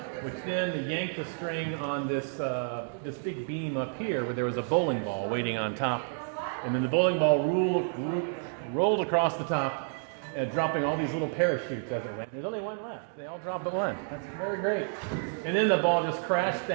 which then yanked the string on this big beam up here where there was a bowling ball waiting on top. And then the bowling ball rolled across the top, dropping all these little parachutes as it went. There's only one left. They all drop but one. That's very great. And then the ball just crashed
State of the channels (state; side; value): silent; left; 58 dB below the other